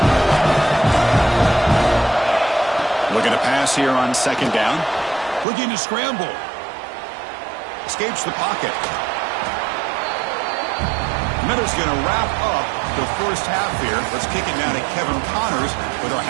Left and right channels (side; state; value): left; drops out; at 5.5 s